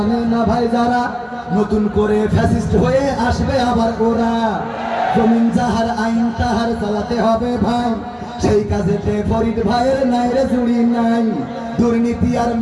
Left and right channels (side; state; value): both; identical; correlation 1.00